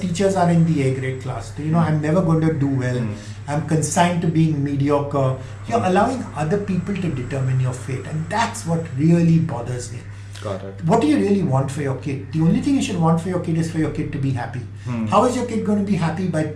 are in the A grade class. So, I'm never going to do well. I'm consigned to being mediocre. You're allowing other people to determine your fate, and that's what really bothers me. Got it. What do you really want for your kid? The only thing you should want for your kid is for your kid to be happy. How is your kid going to be happy? By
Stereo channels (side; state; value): both; identical; correlation 1.00